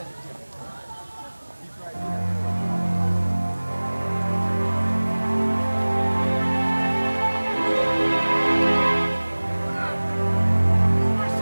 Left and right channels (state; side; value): inverted; both; correlation -1.00